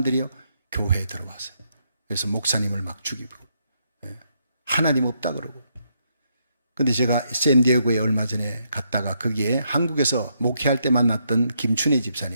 교회에 들어왔어요. 그래서 목사님을 막 죽이고 하나님 없다 그러고. 근데 제가 샌디에고에 얼마 전에 갔다가 거기에 한국에서 목회할 때 만났던 김춘혜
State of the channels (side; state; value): both; inverted; correlation -0.77